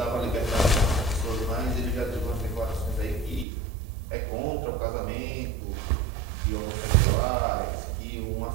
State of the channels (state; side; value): drops out; left; at 3.5 s